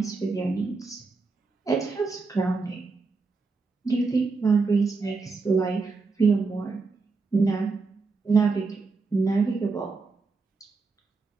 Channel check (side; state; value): left; quieter; 4.2 dB